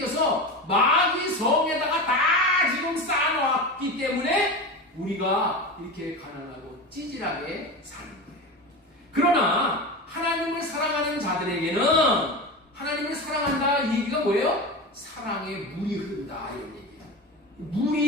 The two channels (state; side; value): normal; both; correlation 0.25